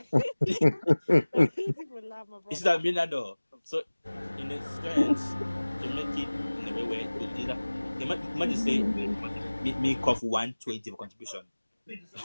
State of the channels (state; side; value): inverted; both; correlation -1.00